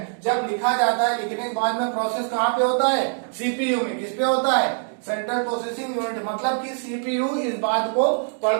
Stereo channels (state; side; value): silent; left; digital silence